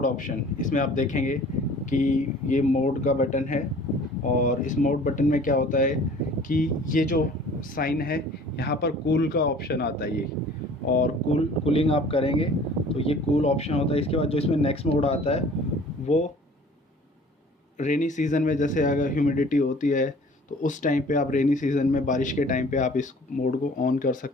ऑप्शन। इसमें आप देखेंगे कि ये मोड का बटन है और इस मोड बटन में क्या होता है कि ये जो साइन है यहाँ पर कूल का ऑप्शन आता है ये, और कूलिंग आप करेंगे तो ये कूल ऑप्शन होता है। इसके बाद जो इसमें नेक्स्ट मोड आता है वो रेनी सीज़न में, जैसे अगर ह्यूमिडिटी होती है तो उस टाइम पे आप रेनी सीज़न में बारिश के टाइम पे आप इस मोड को ऑन कर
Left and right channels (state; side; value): normal; both; correlation 0.49